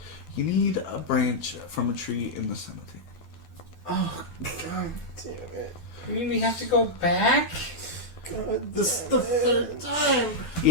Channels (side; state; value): right; late; 12 ms